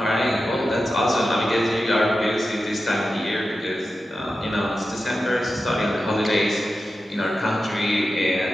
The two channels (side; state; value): both; normal; correlation 0.92